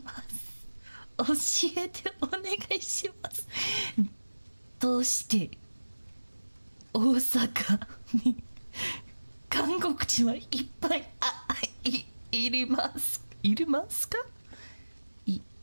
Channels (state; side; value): inverted; both; correlation -1.00